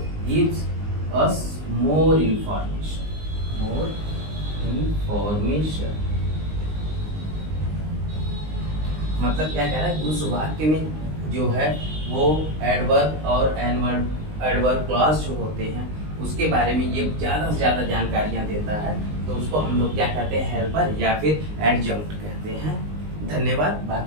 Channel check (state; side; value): late; left; 19 ms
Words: gives us more information, मतलब क्या कह रहा है, उस वाक्य में जो है वो एडवर्ब और एडवर्ब क्लॉज जो होते हैं उसके बारे में ये ज़्यादा से ज़्यादा जानकारियाँ देता है, तो उसको हम लोग क्या कहते हैं, हेल्पर या फिर एडजंक्ट कहते हैं। धन्यवाद।